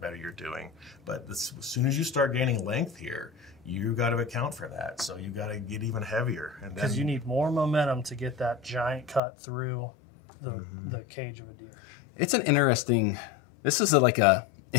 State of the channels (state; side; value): drops out; right; at 9.2 s